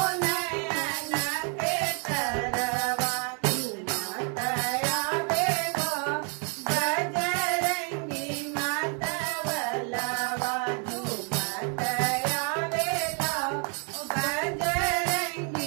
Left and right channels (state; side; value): quieter; left; 39.0 dB